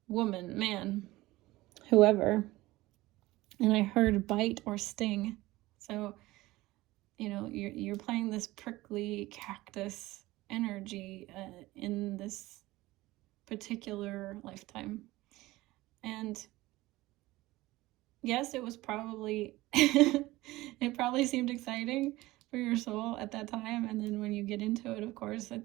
woman, man, whoever. and I heard bite or sting. So, you know, you're playing this prickly cactus energy in this particular lifetime. And yes, it was probably, it probably seemed exciting for your soul at that time. And then when you get into it, of course,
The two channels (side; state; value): left; quieter; 18.6 dB